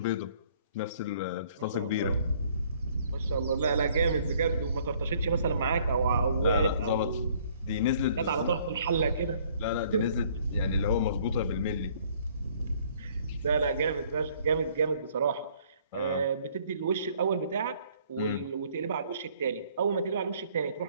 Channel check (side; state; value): both; inverted; correlation -0.60